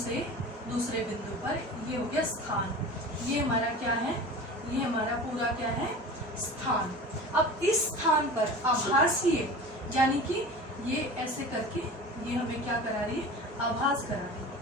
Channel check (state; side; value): normal; both; correlation 0.36